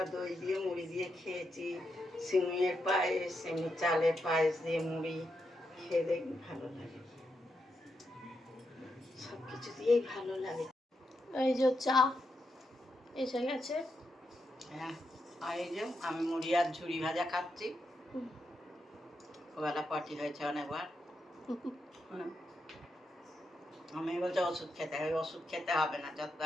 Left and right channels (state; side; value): normal; both; correlation 0.83